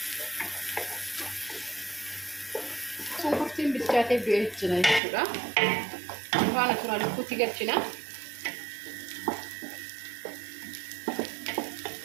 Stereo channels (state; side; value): drops out; left; at 5.0 s